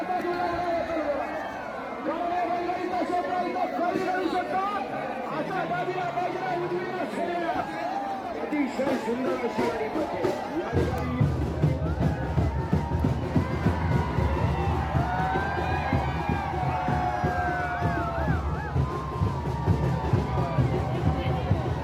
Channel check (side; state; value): both; identical; correlation 1.00